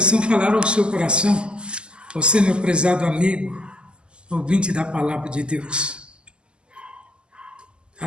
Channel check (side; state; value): left; late; 0.049 ms